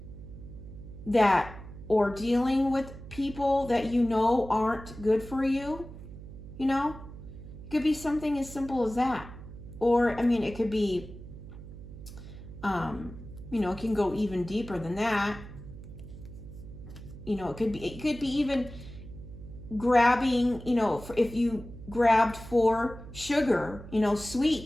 or dealing with people that you know aren't good for you. You know, it could be something as simple as that. Or, I mean, it could be, you know, it can go even deeper than that. You know, it could be even grabbing, you know, if you grabbed for sugar, you know,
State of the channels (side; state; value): right; noise; hum, 14 dB below the sound